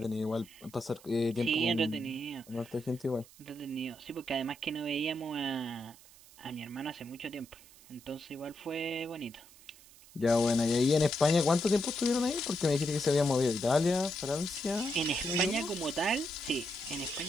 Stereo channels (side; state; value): right; noise; hiss, 23 dB below the sound